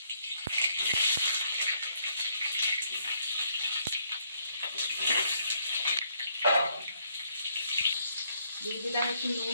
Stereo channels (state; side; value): inverted; both; correlation -0.71